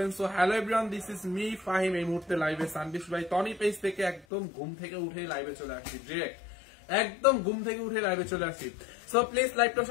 So hello everyone, this is me Fahim. এই মুহূর্তে লাইভে সানবিশ ভাই টনি পেজ থেকে একদম ঘুম থেকে উঠে লাইভে চলে আসছি, ডিরেক্ট একদম ঘুম থেকে উঠে লাইভে চলে আসছি। সো প্লিজ লাইভটা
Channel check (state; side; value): drops out; right; at 4.2 s